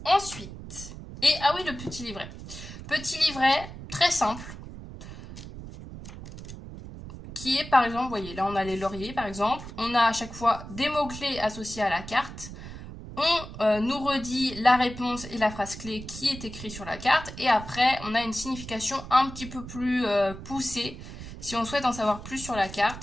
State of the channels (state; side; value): noise; right; rumble, 12 dB below the sound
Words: Ensuite, ah oui, le petit livret. Petit livret très simple, qui est par exemple, vous voyez, là on a les lauriers par exemple, on a à chaque fois des mots-clés associés à la carte, On nous redit la réponse et la phrase clé qui est écrite sur la carte. Et après, on a une signification un petit peu plus poussée si on souhaite en savoir plus sur la